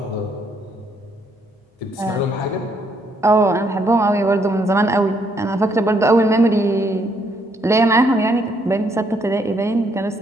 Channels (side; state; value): both; normal; correlation 0.71